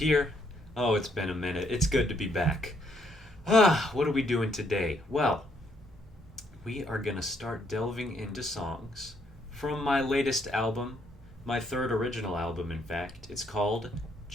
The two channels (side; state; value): both; normal; correlation 0.71